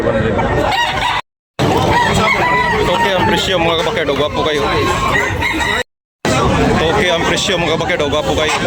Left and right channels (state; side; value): identical; both; correlation 1.00